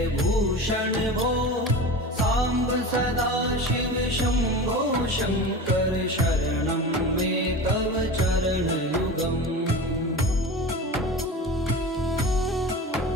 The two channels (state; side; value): normal; both; correlation 0.30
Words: भूषण भो सांब सदा शिव शंभो शंकर शरणं मे तव चरणयुगम्